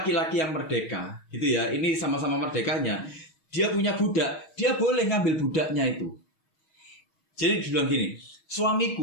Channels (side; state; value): right; late; 6.3 ms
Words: yang merdeka, gitu ya, ini sama-sama merdekanya, dia punya budak, dia boleh ngambil budaknya itu. Jadi dibilang gini,